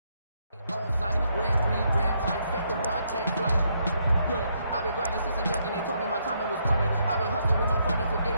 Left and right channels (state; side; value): inverted; both; correlation -0.74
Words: On site, red breed, red tight, set the bar, take flight. Yeah, I've been grinding since a young and they told me my timing was coming. I've been hustling with no fun and forget